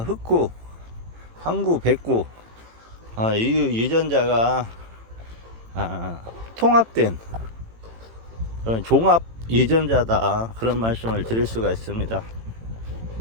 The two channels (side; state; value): left; late; 18 ms